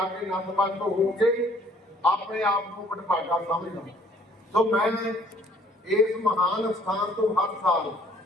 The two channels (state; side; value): normal; both; correlation 0.59